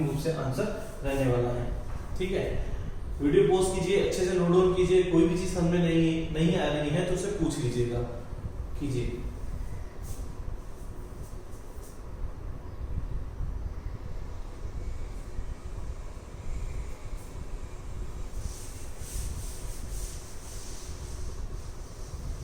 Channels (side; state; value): both; identical; correlation 1.00